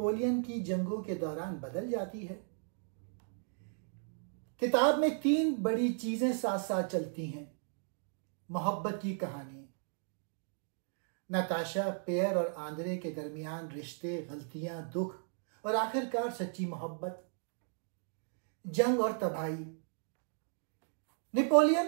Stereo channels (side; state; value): left; silent; digital silence